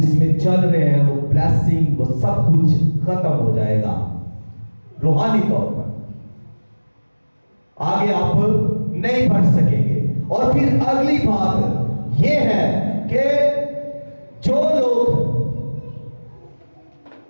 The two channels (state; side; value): inverted; both; correlation -1.00